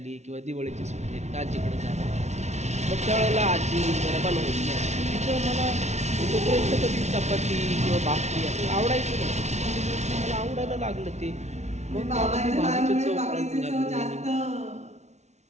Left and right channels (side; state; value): left; late; 0.32 ms